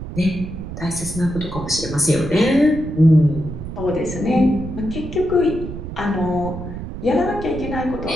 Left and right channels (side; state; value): right; noise; rumble, 9 dB below the sound